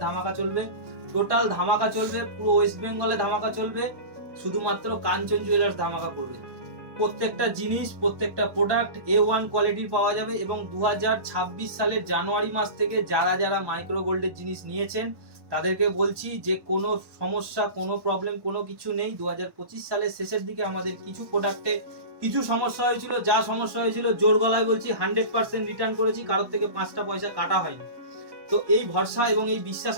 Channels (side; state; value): left; late; 1.2 ms